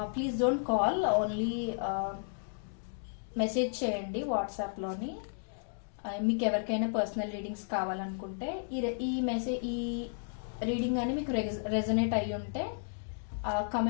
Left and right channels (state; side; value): silent; right; digital silence